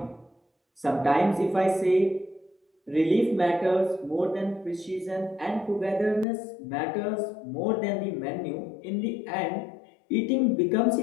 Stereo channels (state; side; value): drops out; right; at 6.2 s